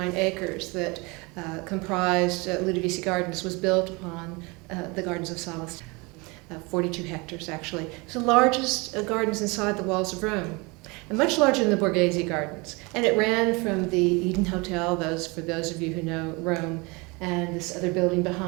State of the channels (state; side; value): quieter; left; 27.0 dB